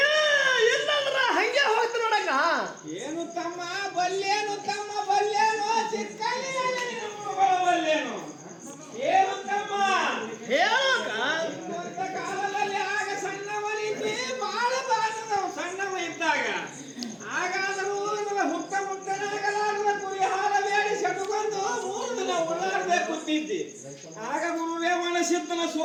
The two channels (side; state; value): both; identical; correlation 1.00